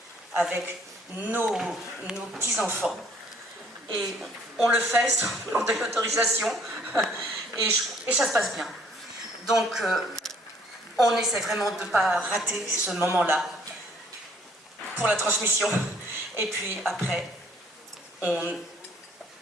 avec nos petits-enfants. Et on le fait sans demander l'autorisation et ça se passe bien. Donc, on essaie vraiment de ne pas rater ce moment-là pour la transmission. Et puis après, le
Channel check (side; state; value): both; normal; correlation 0.60